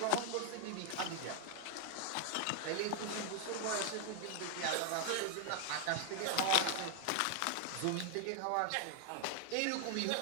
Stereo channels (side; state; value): both; different; correlation 0.00